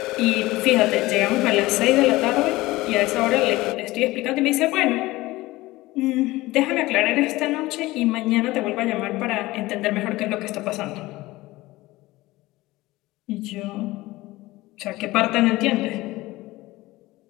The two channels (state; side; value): quieter; right; 19.1 dB